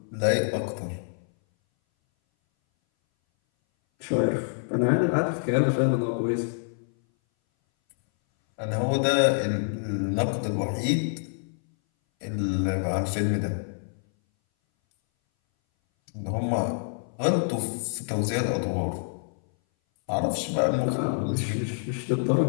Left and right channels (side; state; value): right; silent; 59 dB below the other